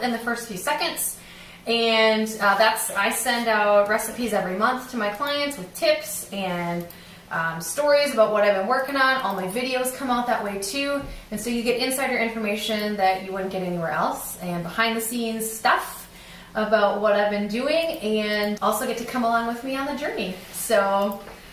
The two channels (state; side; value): identical; both; correlation 1.00